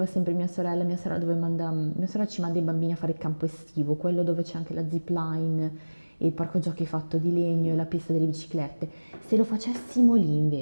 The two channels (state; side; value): inverted; both; correlation -1.00